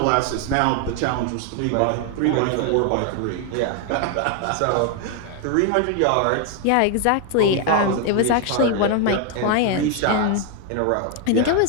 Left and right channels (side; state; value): both; different; correlation 0.01